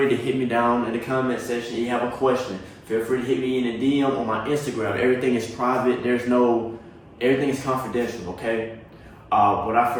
to hit me down in the comment section. If you have a question, feel free to hit me in a DM on my Instagram. Everything is private. Everything is confidential, okay? Without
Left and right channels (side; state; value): both; identical; correlation 1.00